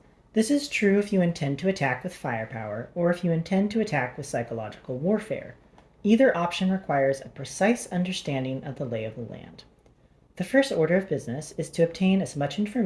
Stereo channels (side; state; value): both; identical; correlation 1.00